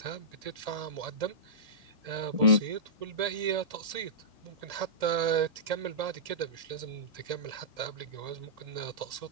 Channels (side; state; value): left; late; 1.8 ms